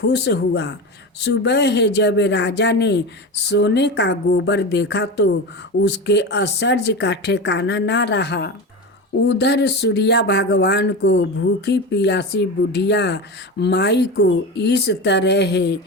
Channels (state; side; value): normal; both; correlation 0.24